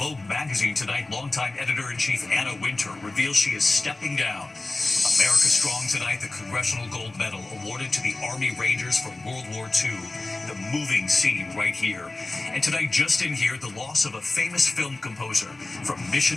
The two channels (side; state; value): right; quieter; 3.1 dB